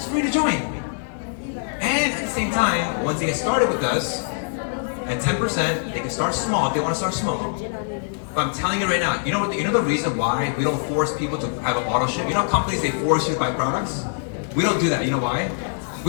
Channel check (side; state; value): right; silent; 63 dB below the other